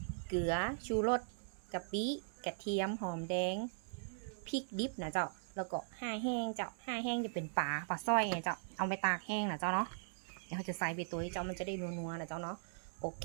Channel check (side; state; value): left; silent; 51 dB below the other